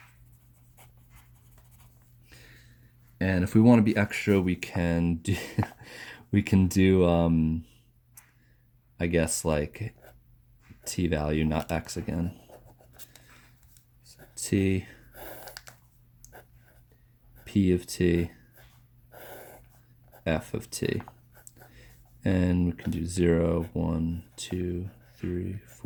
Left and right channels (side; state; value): both; identical; correlation 1.00